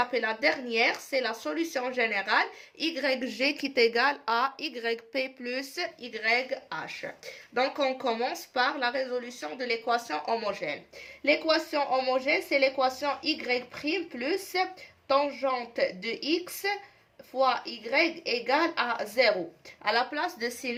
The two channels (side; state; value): both; identical; correlation 1.00